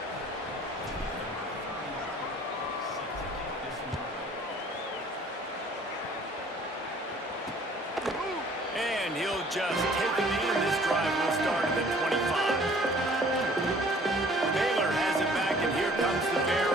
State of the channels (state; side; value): normal; both; correlation 0.54